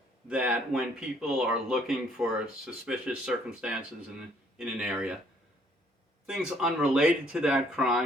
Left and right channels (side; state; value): both; normal; correlation 0.64